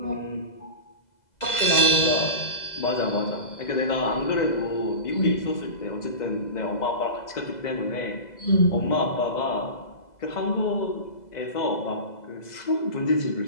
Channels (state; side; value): late; right; 2.0 ms